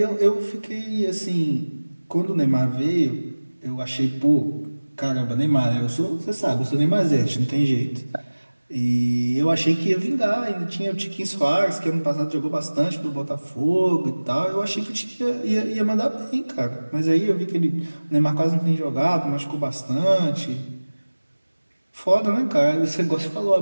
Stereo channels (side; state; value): both; inverted; correlation -1.00